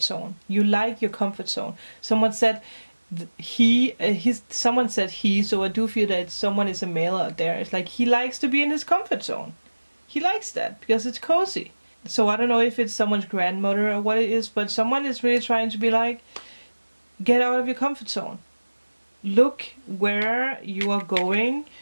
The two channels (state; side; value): inverted; both; correlation -1.00